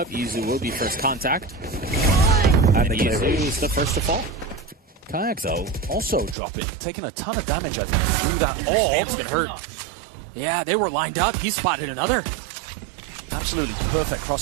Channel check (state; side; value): drops out; left; at 6.4 s